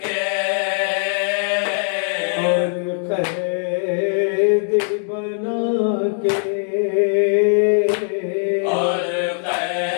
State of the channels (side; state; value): right; silent; 62 dB below the other